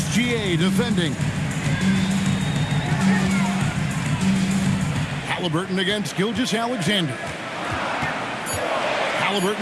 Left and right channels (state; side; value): identical; both; correlation 1.00